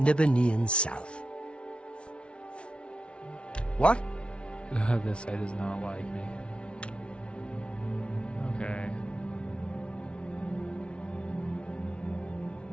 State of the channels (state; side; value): late; right; 0.059 ms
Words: Nibbanean South. What? This guy does not like me. Okay.